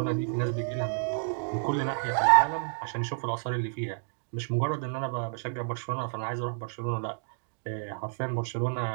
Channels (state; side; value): silent; left; digital silence